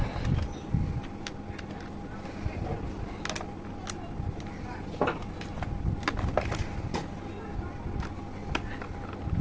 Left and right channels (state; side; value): identical; both; correlation 1.00